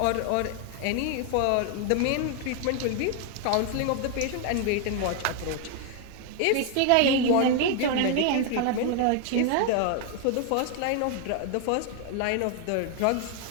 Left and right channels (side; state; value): both; different; correlation 0.00